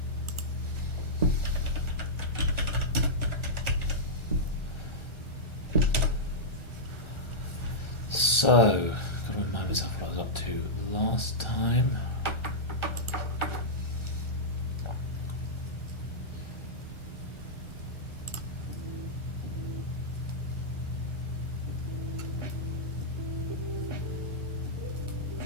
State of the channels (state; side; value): late; right; 1.3 ms